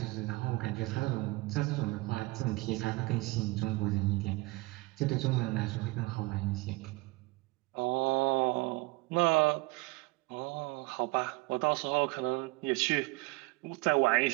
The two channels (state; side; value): quieter; left; 23.5 dB